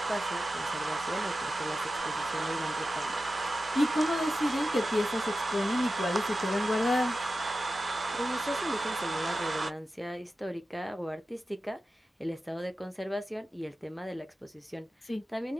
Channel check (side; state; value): both; normal; correlation 0.93